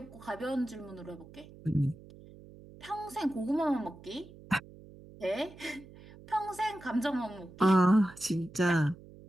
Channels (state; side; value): noise; right; hum, 20 dB below the sound